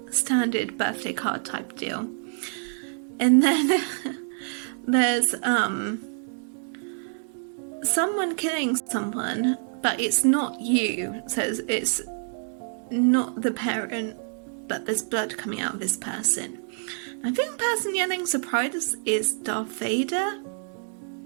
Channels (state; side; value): silent; left; 60 dB below the other